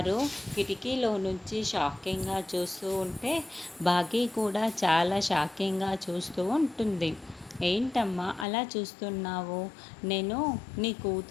కిటికీలో నుంచి షాకింగ్గా చూస్తూ ఉంటే బాగీ కూడా చాలా షాకింగ్గా చూస్తూ ఉంటుంది. ఏంటమ్మా అలా చూస్తున్నావు? నేను నీ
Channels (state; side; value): drops out; right; at 8.5 s